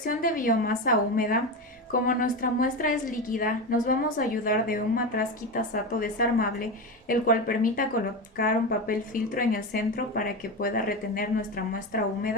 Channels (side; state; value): both; normal; correlation 0.19